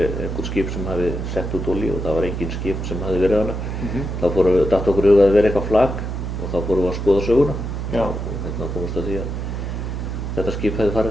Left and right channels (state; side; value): noise; right; hum, 4 dB below the sound